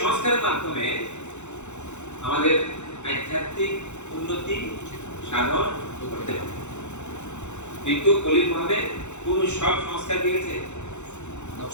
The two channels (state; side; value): late; right; 0.83 ms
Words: সংস্কারের মাধ্যমে আমাদের আধ্যাত্মিক উন্নতি সাধন করতে হবে, কিন্তু কলির মধ্যে কোন সব সংস্কার দিয়ে গেছে